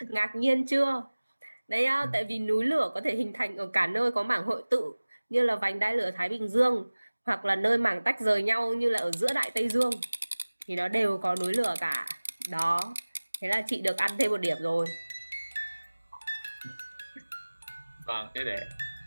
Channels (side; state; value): both; inverted; correlation -1.00